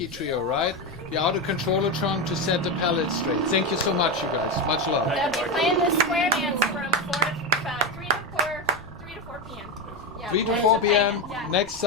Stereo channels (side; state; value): left; noise; rumble, 21 dB below the sound